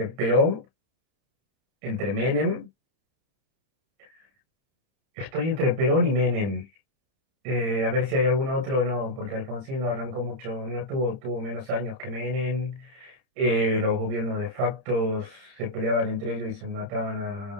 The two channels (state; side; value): late; left; 30 ms